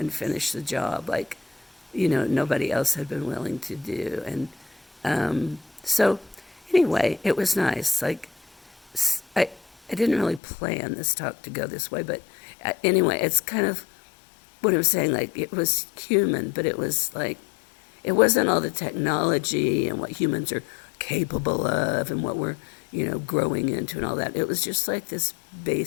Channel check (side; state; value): right; drops out; at 10.4 s